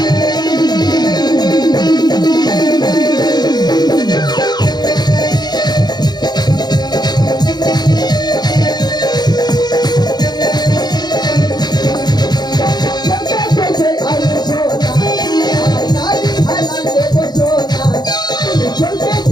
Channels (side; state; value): right; late; 0.20 ms